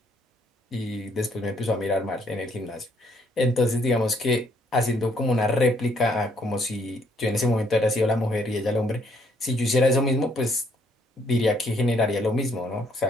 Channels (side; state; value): both; normal; correlation 0.68